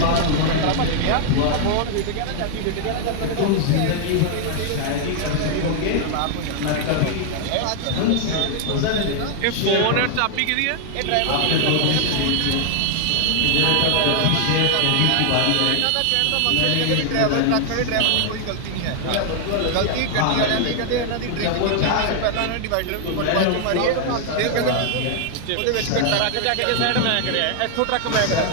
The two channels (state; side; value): different; both; correlation 0.00